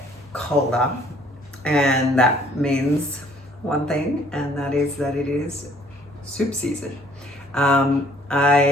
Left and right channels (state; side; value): normal; both; correlation 0.59